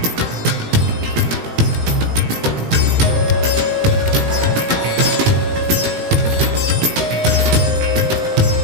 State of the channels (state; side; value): late; left; 17 ms